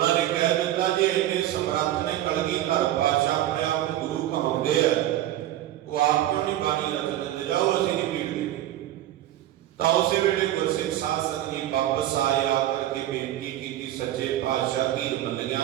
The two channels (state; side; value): quieter; left; 13.3 dB